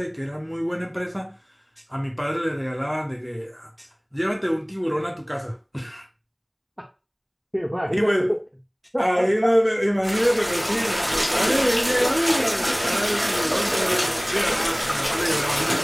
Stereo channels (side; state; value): both; identical; correlation 1.00